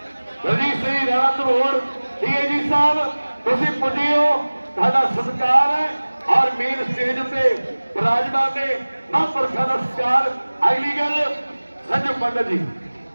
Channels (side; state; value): both; inverted; correlation -1.00